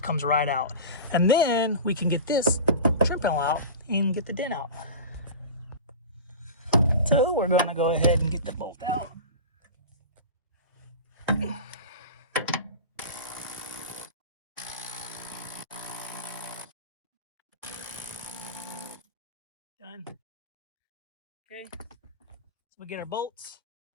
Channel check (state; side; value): inverted; both; correlation -0.31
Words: comes right out. And then we can get this trim panel out and get the dent out. So we're gonna go ahead and get the bolt out. Done. Okay, so we get our bolts.